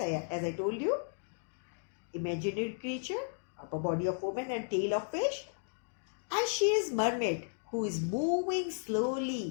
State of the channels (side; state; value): right; silent; digital silence